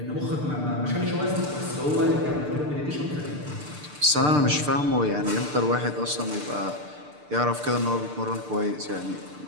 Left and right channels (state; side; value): late; left; 6.7 ms